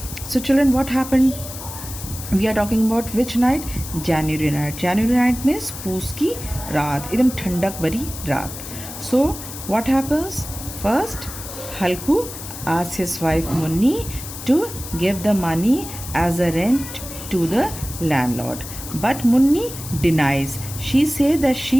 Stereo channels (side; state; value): left; noise; hiss, 11 dB below the sound